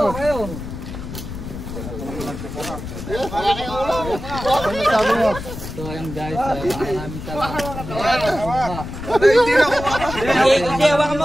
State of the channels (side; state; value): left; noise; rumble, 9 dB below the sound